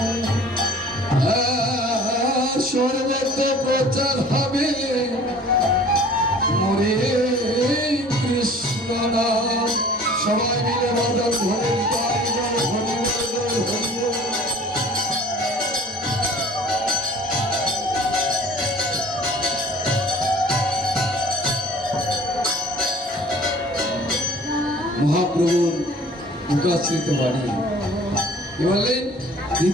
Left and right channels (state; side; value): normal; both; correlation 0.48